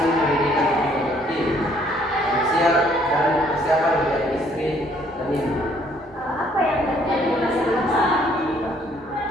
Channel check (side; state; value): both; normal; correlation 0.63